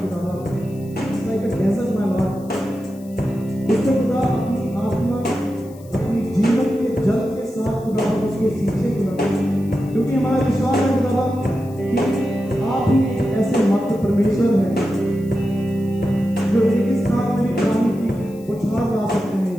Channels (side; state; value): left; noise; hiss, 26 dB below the sound